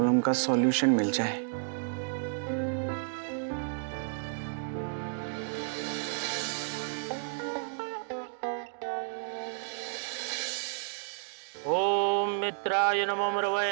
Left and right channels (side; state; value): left; silent; digital silence